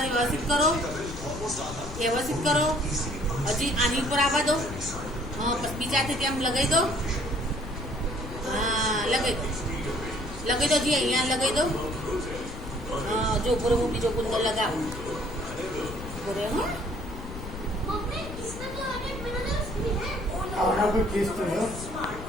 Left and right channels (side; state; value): left; noise; rumble, 10 dB below the sound